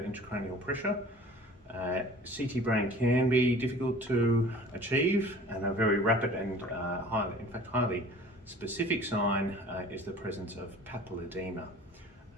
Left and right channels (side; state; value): both; normal; correlation 0.45